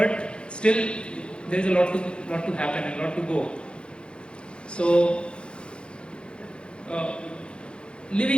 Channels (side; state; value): right; late; 0.055 ms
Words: still there is a lot to happen and a lot to go. So